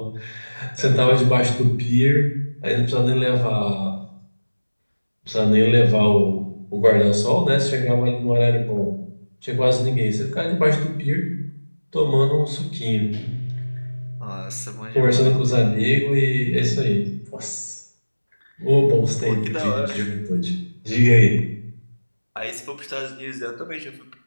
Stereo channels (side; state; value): both; inverted; correlation -1.00